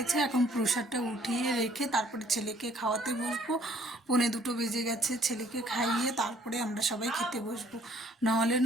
এখন প্রসাদটা উঠিয়ে রেখে তারপরে ছেলেকে খাওয়াতে বসবো। 1:45 বেজে গেছে। ছেলেকে খাইয়ে তারপরে আমরা সবাই খেতে বসবো। নাহলে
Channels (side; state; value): both; normal; correlation 0.60